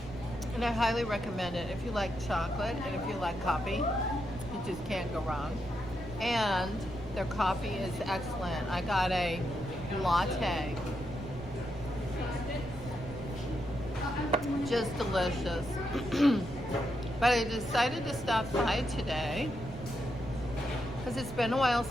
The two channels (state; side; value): noise; right; rumble, 14 dB below the sound